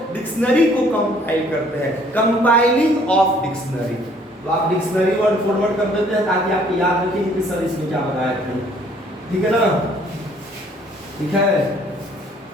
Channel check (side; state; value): both; normal; correlation 0.60